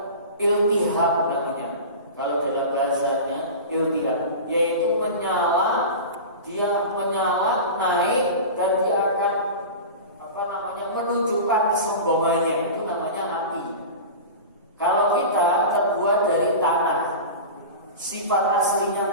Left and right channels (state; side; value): inverted; both; correlation -0.30